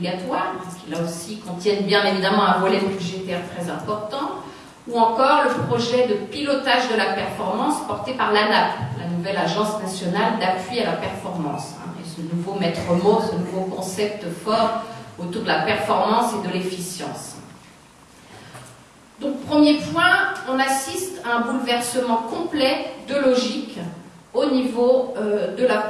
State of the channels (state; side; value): identical; both; correlation 1.00